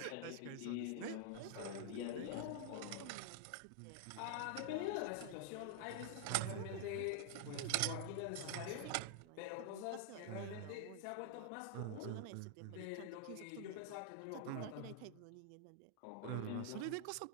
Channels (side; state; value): both; different; correlation 0.00